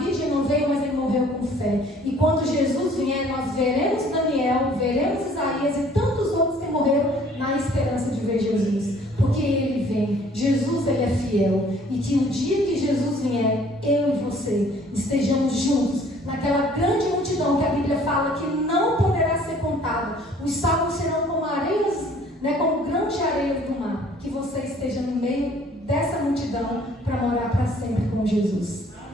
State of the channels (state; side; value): normal; both; correlation 0.56